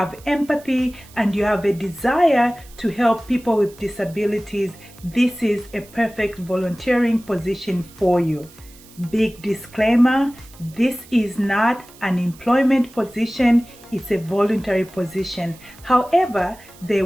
empathy, and you have a desire to help people with disabilities, this is a perfect volunteering position for you. Big disclaimer, this is not an employment position, it's a voluntary position. However, they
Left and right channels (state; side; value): noise; right; hiss, 23 dB below the sound